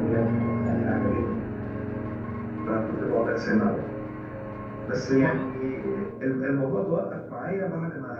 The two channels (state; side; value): identical; both; correlation 1.00